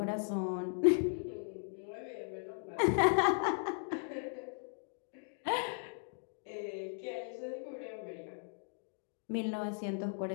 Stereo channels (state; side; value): silent; right; digital silence